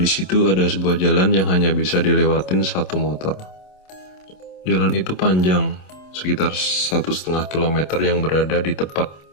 di situ ada sebuah jalan yang hanya bisa dilewatin satu motor. Jalan itu panjang, sekitar 1,5 kilometer yang berada di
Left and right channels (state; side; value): late; right; 27 ms